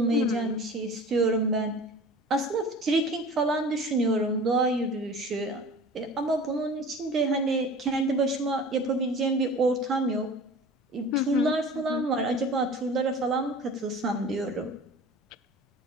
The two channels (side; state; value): both; normal; correlation 0.40